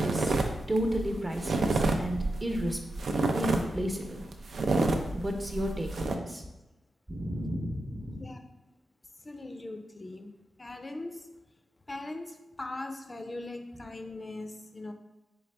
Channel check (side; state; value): both; normal; correlation 0.88